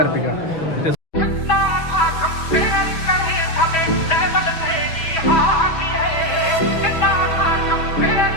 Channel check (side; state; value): right; late; 6.2 ms